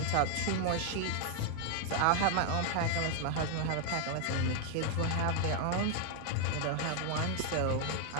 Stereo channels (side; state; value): both; different; correlation 0.00